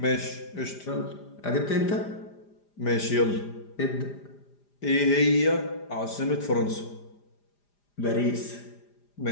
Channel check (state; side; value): late; right; 5.0 ms